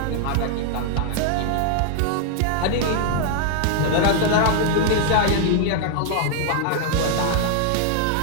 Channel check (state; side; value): different; both; correlation 0.00